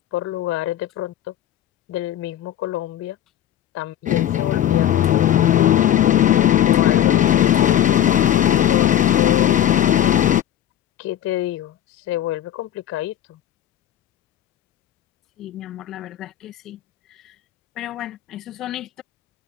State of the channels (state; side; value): quieter; right; 11.3 dB